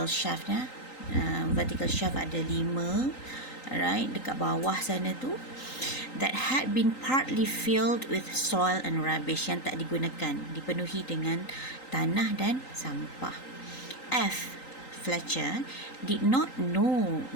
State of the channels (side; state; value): right; late; 3.8 ms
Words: shaft ada 5, right, dekat bawah sana tu, that had been partly filled with soil and rubbish, yang tak digunakan, dipenuhi dengan tanah dan sampah. F, Fletcher, did not know